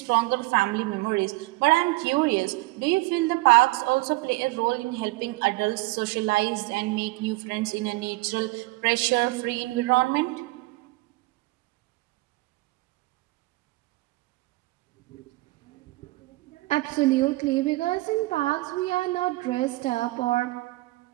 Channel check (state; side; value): quieter; left; 21.4 dB